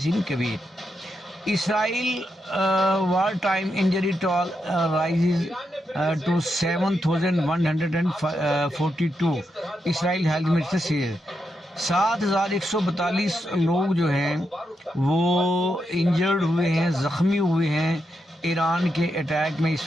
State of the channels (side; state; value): both; normal; correlation 0.84